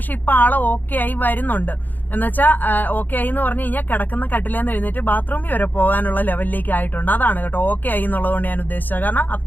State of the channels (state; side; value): late; right; 0.086 ms